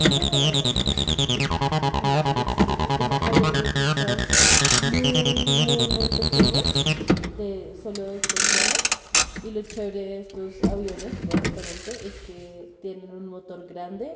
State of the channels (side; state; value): both; identical; correlation 1.00